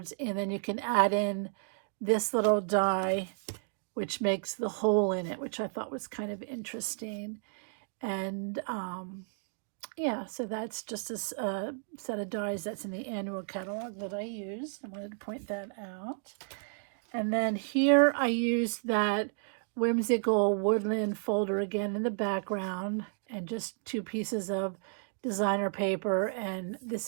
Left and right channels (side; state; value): left; silent; digital silence